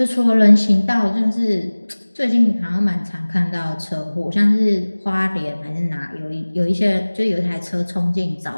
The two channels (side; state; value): both; inverted; correlation -1.00